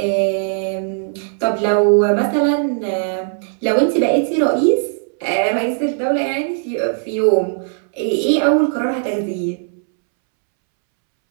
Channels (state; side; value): silent; left; 67 dB below the other